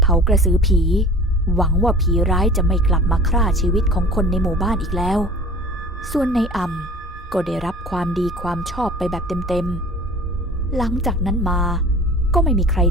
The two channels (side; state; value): both; normal; correlation 0.43